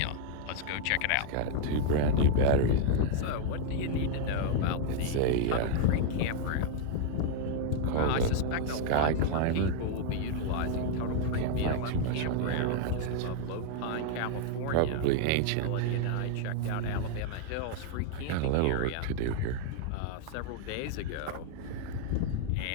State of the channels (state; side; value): different; both; correlation 0.00